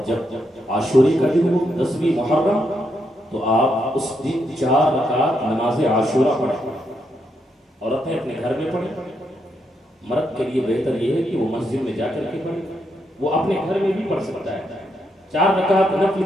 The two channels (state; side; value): normal; both; correlation 0.80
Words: جب عاشورے کا دن ہو 10ویں محرم تو آپ اس دن 4 رکعت نماز عاشورہ پڑھیں، اور اپنے گھر میں پڑھیں۔ مرد کے لیے بہتر یہ ہے کہ وہ مسجد میں جا کر کے پڑھے، وہ اپنے گھر میں بھی پڑھ سکتا ہے، 4 رکعت نفل